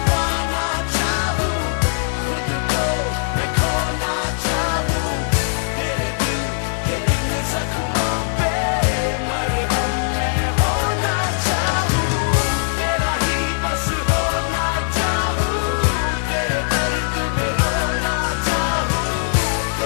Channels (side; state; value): right; silent; digital silence